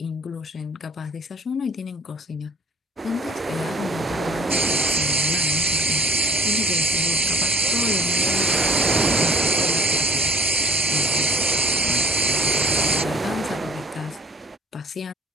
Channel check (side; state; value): both; normal; correlation 0.49